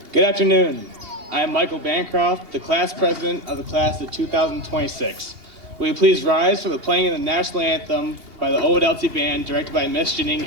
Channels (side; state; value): left; late; 2.8 ms